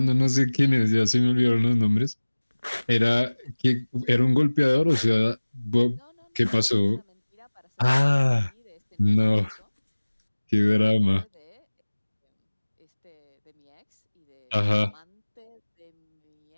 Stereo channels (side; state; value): both; inverted; correlation -1.00